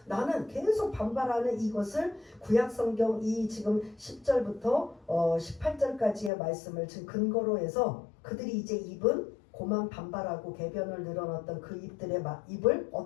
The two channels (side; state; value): right; drops out; at 6.3 s